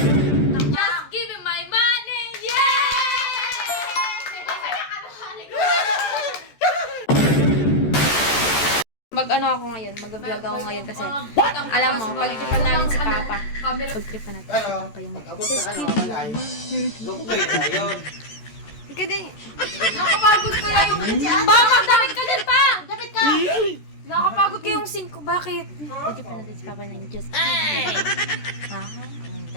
Just give me my money! Mag-ano ako ngayon, mag-vlog ako ngayon kasi alam mo, pag-tripan namin si Papa. Pag-tripan natin si Papa yung Pag-abot ka ng malay, lupay na yun. Ika din. Nakapagod kaya yung... Pa, magdamit ka din pa! Dapat ka. Nakapagod kaya yung 5. Bakit? Pag-tripan natin si Papa ng just kidding. Ha?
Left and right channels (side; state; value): right; late; 14 ms